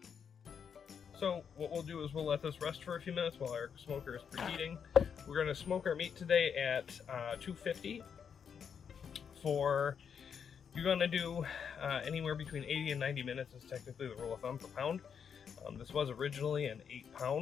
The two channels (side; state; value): right; quieter; 7.2 dB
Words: So what we'll do is we'll let this rest for a few minutes while our smoker is preheating. We're going to smoke our meat today at 250 for, you're going to do anywhere between 80 and 90 minutes is technically the rule of thumb per pound. This was originally an